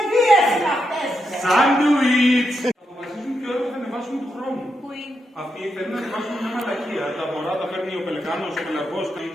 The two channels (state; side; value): normal; both; correlation 0.83